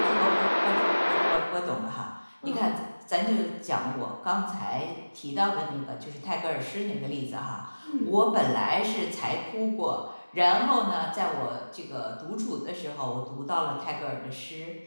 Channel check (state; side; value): inverted; both; correlation -1.00